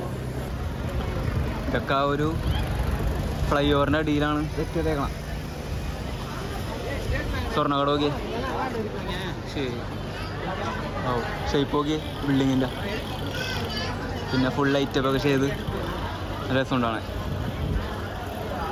ഇതൊക്കെ ആ ഒരു ഫ്ലൈ ഓവറിൻ്റെ അടിയിലാണ് സെറ്റ് ചെയ്തേക്കണം. സ്വർണ്ണക്കട നോക്കി. ശരി, ഓ ഷേപ്പ് നോക്കി ബിൽഡിങ്ങിൻ്റെ, പിന്നെ ഫുൾ ലൈറ്റപ്പൊക്കെ ചെയ്ത് രസമുണ്ടാണ്.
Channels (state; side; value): identical; both; correlation 1.00